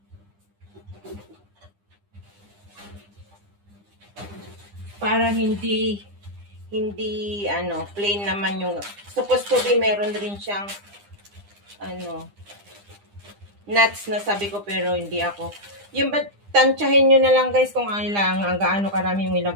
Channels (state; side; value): late; left; 9.9 ms